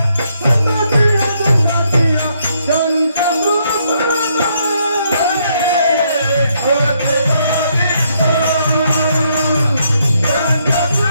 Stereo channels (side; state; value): both; inverted; correlation -0.73